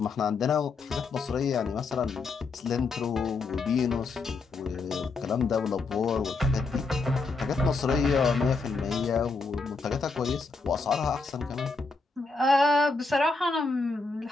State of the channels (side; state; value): right; quieter; 3.9 dB